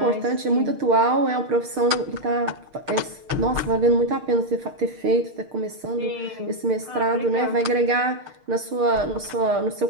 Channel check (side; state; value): left; late; 6.5 ms